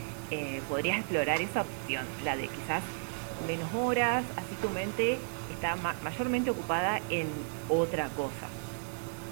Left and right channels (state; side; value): silent; left; digital silence